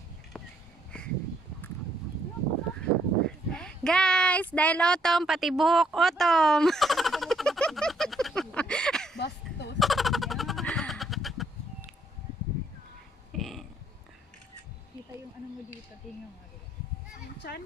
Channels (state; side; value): normal; both; correlation 0.71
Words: Guys, dahil autumn, pati buhok autumn. Bastos. Kita yung ano mo dito. Tingnan mo. Yung chan?